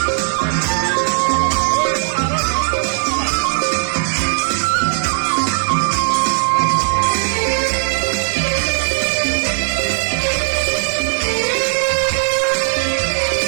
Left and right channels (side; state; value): left; silent; 66 dB below the other